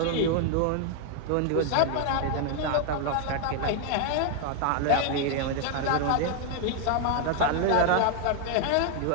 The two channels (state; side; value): different; both; correlation 0.00